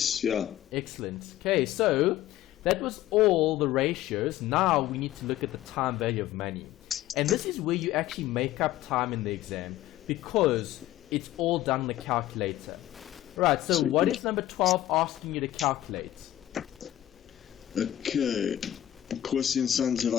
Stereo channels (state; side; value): quieter; right; 13.6 dB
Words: Yeah. Excellent. Okay, so that was all the ratios. Now we need to look at the time value of money. And this is where you actually make up time in the exam because it's all done on the calculator. Right, so what is number 12 asking you to calculate? Okay. Corsi and Sons have